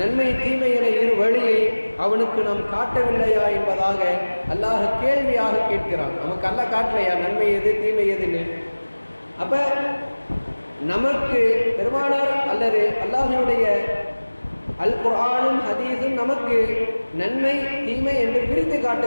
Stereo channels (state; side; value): inverted; both; correlation -1.00